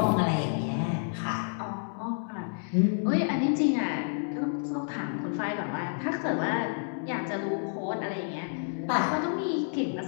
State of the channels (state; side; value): silent; right; digital silence